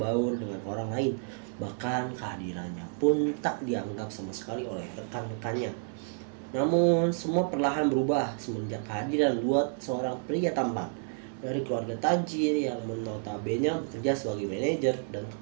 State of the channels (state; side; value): silent; left; 58 dB below the other